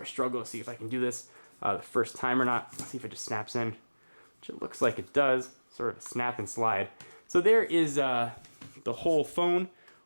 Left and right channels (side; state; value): both; inverted; correlation -1.00